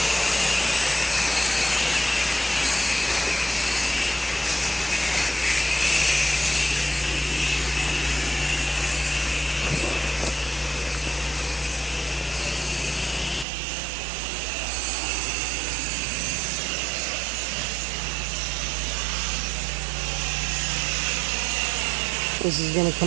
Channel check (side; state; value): left; drops out; at 13.5 s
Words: This is gonna